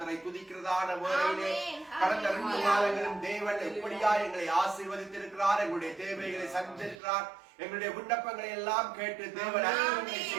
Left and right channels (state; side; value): drops out; left; at 7.0 s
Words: துதிக்கிறதான வேளையிலே கடந்த 2 மாதங்களும் தேவன் எப்படியா எங்களை ஆசீர்வதித்திருக்கிறார், எங்களுடைய தேவைகளை சந்தித்திருக்கிறார், எங்களுடைய விண்ணப்பங்களை எல்லாம் கேட்டு தேவன் அற்புதங்களை